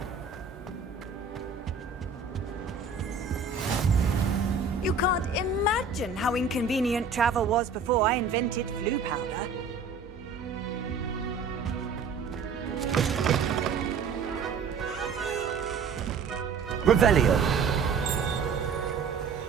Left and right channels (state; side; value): quieter; left; 5.1 dB